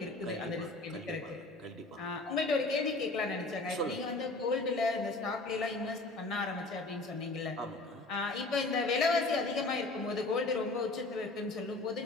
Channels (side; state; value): right; quieter; 3.1 dB